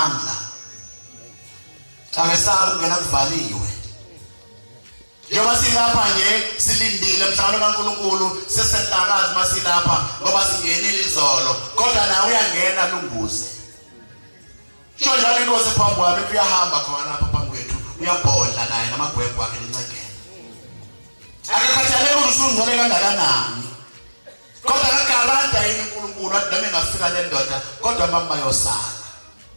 Akasaba ukungena kuvaliwe. Njengoba silapha nje silindile mhlawumbe kaNkulunkulu sesenhlakazi masilapha ngoba singenile izolo kodwa nawe uyangena lunguze. Sho njalo inkosi phambi kwami kuyahamba khona lapha phambi kwethu uyabhodla naye namagwegwe akhe lencekela. Akakhathalele ukuthi usungcwele kangakanani. Kodwa akagaranta yini uNkulunkulu athi noma engafika le ndoda kodwa mama bayosala.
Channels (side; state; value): both; inverted; correlation -1.00